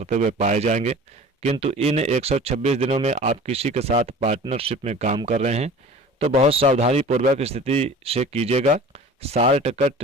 हुए पाए जाएंगे। किंतु इन 126 दिनों में आप किसी के साथ पार्टनरशिप में काम कर रहे हैं तो बहुत सावधानी पूर्वक स्थिति से कीजिएगा। शार्ट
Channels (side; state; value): both; normal; correlation 0.42